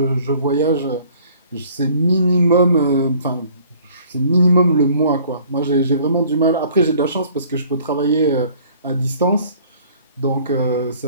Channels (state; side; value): inverted; both; correlation -0.55